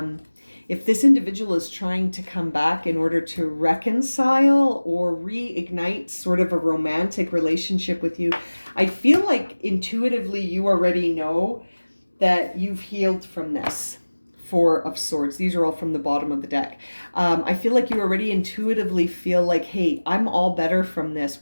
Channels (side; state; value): both; inverted; correlation -1.00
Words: if this individual is trying to come back in order to reconcile or reignite sort of a romantic relationship with you, I feel like intuitively you already know that you've healed from this. 4 of Swords. These are all from the bottom of the deck. I feel like you already intuitively feel like, hey, I'm all better from this.